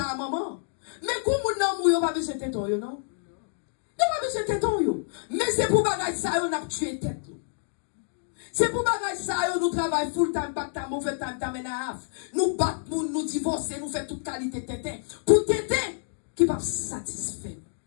maman. Mais quand moun nan mourir, pas besoin de téton, non? Yon pas besoin de téton, mais c'est pour bagage ça, on a tué tête. C'est pour bagage ça, nous travaillons full time, pas de mauvais time, t'amène à half. Nous battons, nous divorçons, nous faisons toute qualité de tétin. Pour tétin, qui va satisfaire nous.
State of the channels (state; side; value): silent; right; digital silence